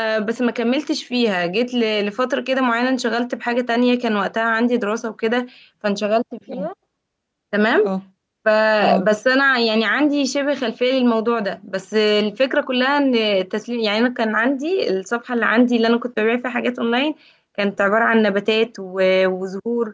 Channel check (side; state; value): both; identical; correlation 1.00